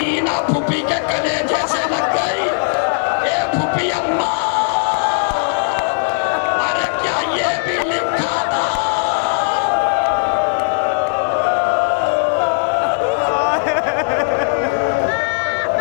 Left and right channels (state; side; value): silent; right; digital silence